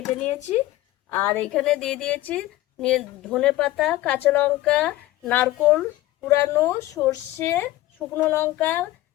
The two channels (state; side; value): quieter; right; 16.2 dB